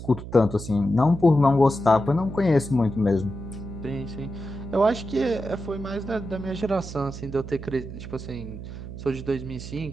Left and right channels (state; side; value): noise; right; hum, 10 dB below the sound